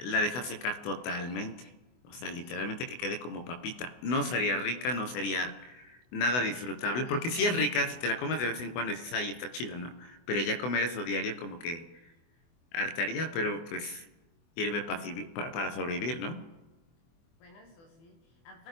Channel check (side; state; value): right; late; 24 ms